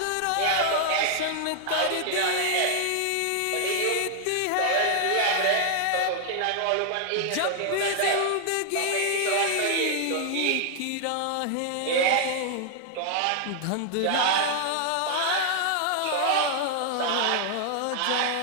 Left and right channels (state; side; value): different; both; correlation 0.00